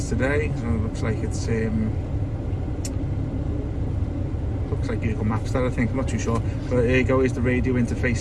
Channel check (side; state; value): both; identical; correlation 1.00